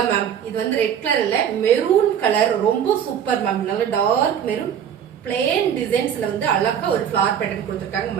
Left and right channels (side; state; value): left; quieter; 8.8 dB